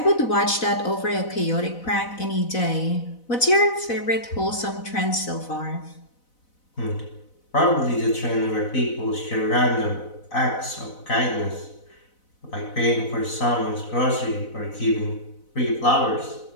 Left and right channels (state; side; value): late; right; 4.0 ms